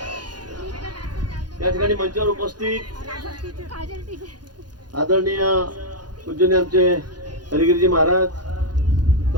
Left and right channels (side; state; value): left; late; 0.70 ms